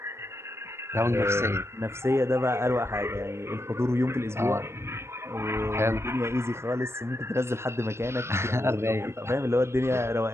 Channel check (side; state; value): left; late; 0.13 ms